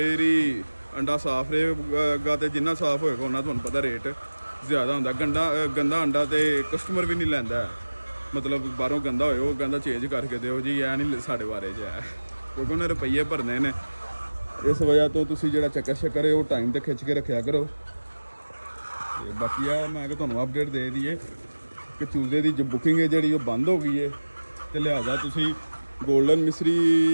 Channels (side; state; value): both; inverted; correlation -1.00